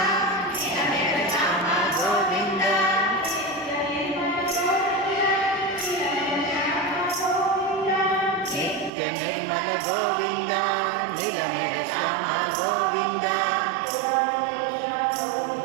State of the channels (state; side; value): drops out; left; at 8.9 s